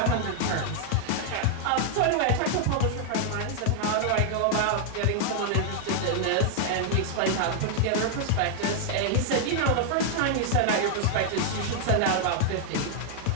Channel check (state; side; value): different; both; correlation 0.00